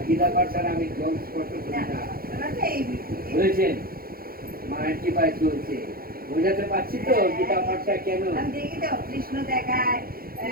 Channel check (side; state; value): left; late; 0.43 ms